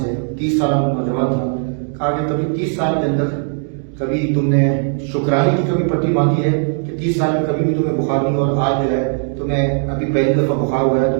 30 سالہ نوجوان تھا، کہا کہ کبھی 30 سال کے اندر کبھی تم نے شکرانے کی کبھی پٹی باندھی ہے کہ 30 سال میں کبھی بھی تمہیں بخار نہیں ہوا اور آج جو ہے تمہیں ابھی پہلی دفعہ بخار ہوا ہے تم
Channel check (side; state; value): left; silent; 66 dB below the other